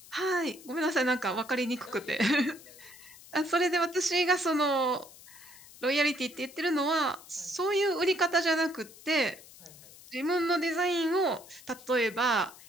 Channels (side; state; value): left; noise; hiss, 20 dB below the sound